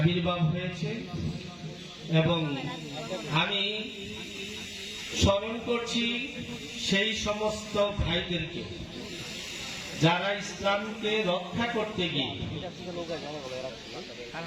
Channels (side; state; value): both; identical; correlation 1.00